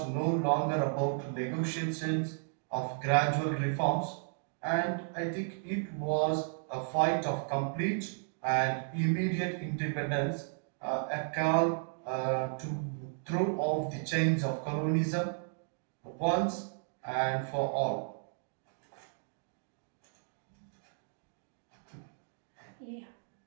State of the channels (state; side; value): silent; left; digital silence